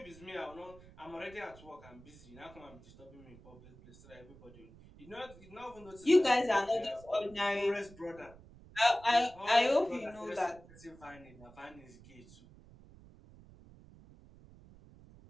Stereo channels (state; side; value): noise; right; rumble, 21 dB below the sound